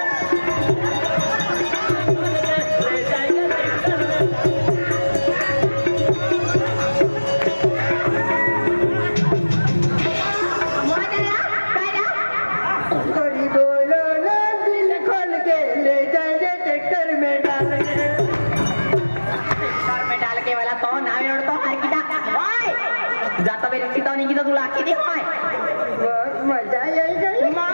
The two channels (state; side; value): inverted; both; correlation -1.00